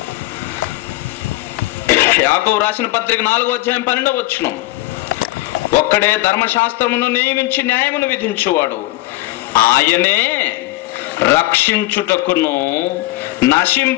యాకోబు రాసిన పత్రిక 4వ అధ్యాయం 12వ వచనం. ఒక్కడే ధర్మశాస్త్రమును నియమించి న్యాయమును విధించువాడు, ఆయనే రక్షించుటకును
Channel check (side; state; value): right; quieter; 18.8 dB